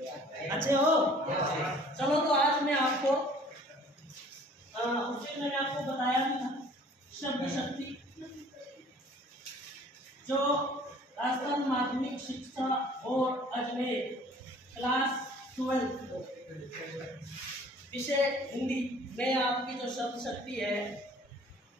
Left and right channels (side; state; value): both; normal; correlation 0.52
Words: अच्छे हो? चलो, तो आज मैं आपको उसे मैंने आपको बताया था शब्द शक्ति, जो राजस्थान माध्यमिक शिक्षा बोर्ड अजमेर क्लास 12 विषय हिंदी में आपकी जो शब्द शक्ति है